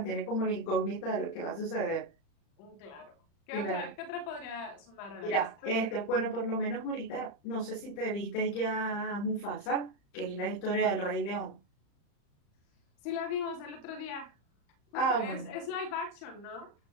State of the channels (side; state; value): right; late; 35 ms